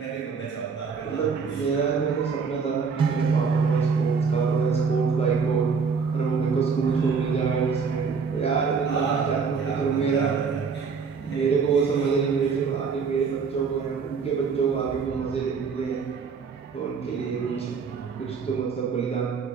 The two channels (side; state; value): left; quieter; 5.5 dB